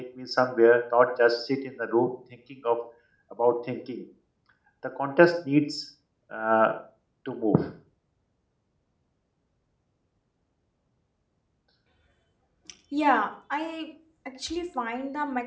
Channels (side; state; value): both; identical; correlation 1.00